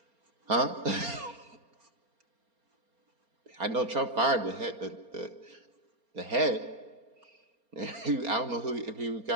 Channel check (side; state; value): left; late; 4.3 ms